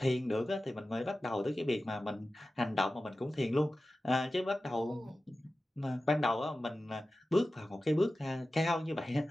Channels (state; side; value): normal; both; correlation 0.95